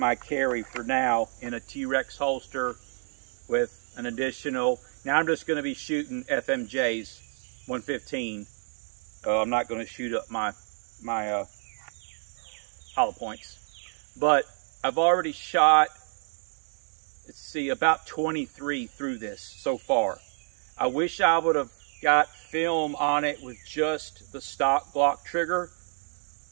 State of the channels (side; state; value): left; silent; 59 dB below the other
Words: carry for now, in a T-Rex holster with an additional. Now I'm just going to be shooting FMJs 115. I'm not going to shoot up my hollow points, but I've already shot, let's see, about 23 through this so far. I wish I would have got film on it with just the stock Glock trigger.